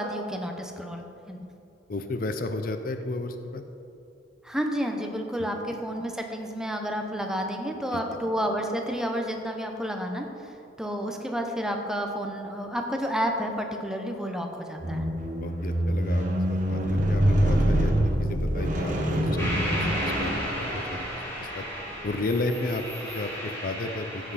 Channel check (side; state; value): both; normal; correlation 0.73